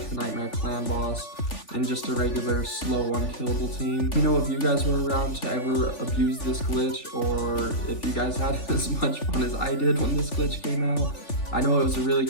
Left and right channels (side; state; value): right; late; 3.5 ms